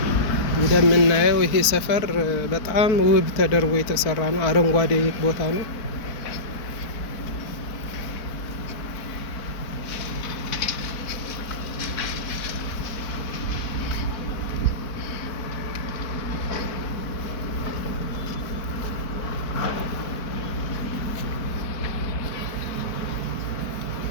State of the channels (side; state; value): right; late; 4.5 ms